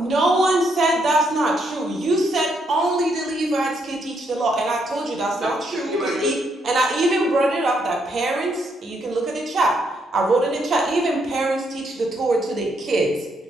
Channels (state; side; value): normal; both; correlation 0.75